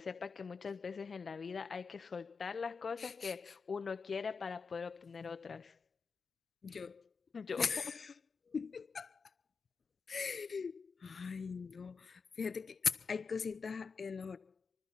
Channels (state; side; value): quieter; right; 5.1 dB